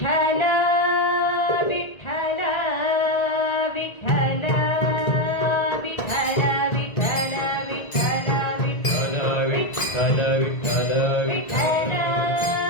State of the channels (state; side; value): late; right; 1.9 ms